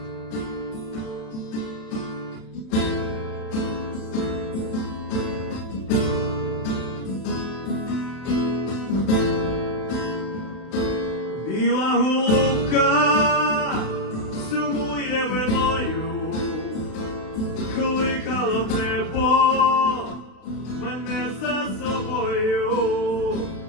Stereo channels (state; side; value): late; right; 32 ms